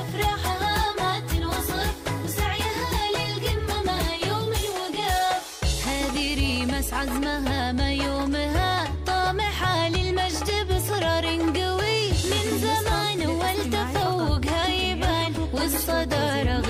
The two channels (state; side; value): identical; both; correlation 1.00